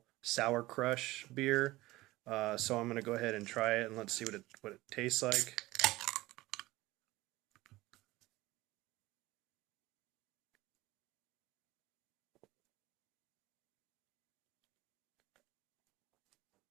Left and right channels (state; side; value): quieter; left; 18.7 dB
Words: Sour Crush beer. So I'm going to go ahead and try it and let's see what it tastes like.